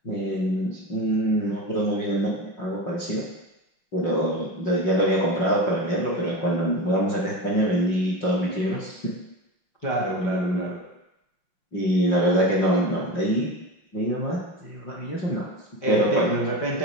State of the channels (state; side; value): late; right; 5.7 ms